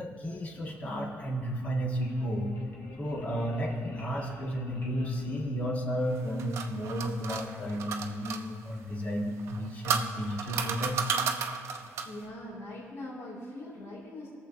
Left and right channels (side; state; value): both; normal; correlation 0.64